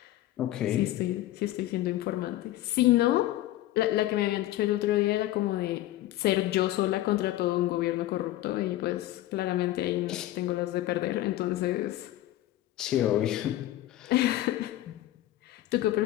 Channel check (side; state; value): right; quieter; 14.9 dB